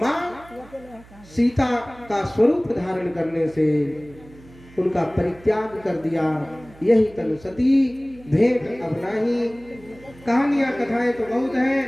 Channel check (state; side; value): noise; right; hum, 23 dB below the sound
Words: सीता का स्वरूप धारण करने से उनका परित्याग कर दिया। यही तनु सती भेंट अब नाही। कहानियां कथाएं तो बहुत हैं।